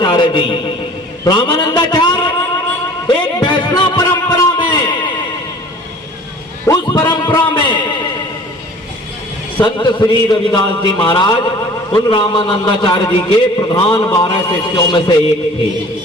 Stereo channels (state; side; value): normal; both; correlation 0.47